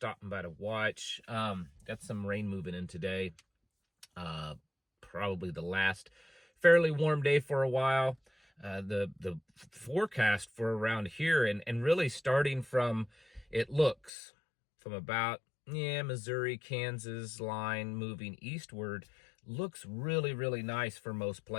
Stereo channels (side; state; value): right; drops out; at 14.1 s